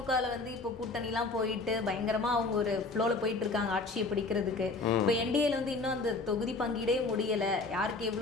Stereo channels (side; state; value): right; quieter; 3.6 dB